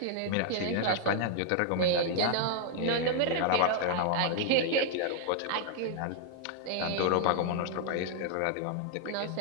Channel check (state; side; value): different; both; correlation 0.00